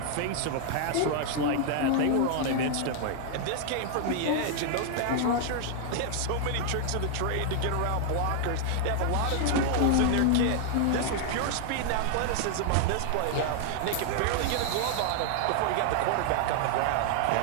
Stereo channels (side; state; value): both; different; correlation -0.01